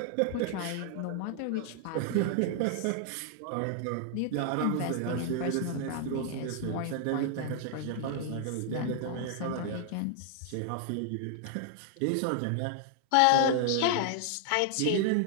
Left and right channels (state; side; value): different; both; correlation -0.01